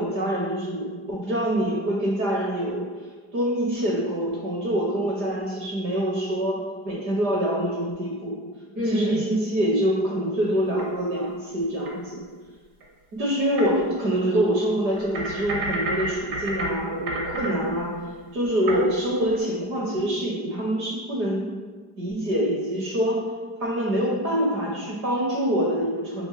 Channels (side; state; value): left; late; 4.9 ms